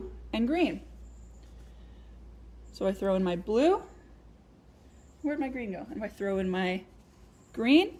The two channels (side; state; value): both; identical; correlation 1.00